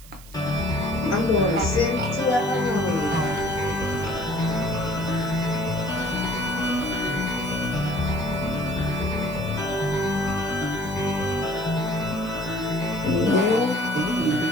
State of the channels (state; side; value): noise; right; hiss, 21 dB below the sound